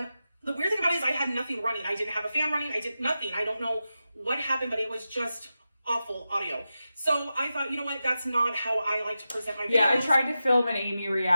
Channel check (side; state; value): both; inverted; correlation -0.92